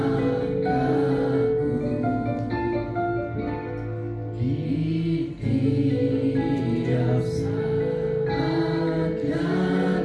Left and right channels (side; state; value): both; identical; correlation 1.00